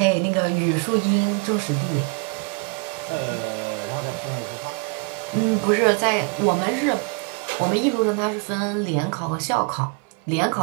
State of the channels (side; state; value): left; quieter; 32.6 dB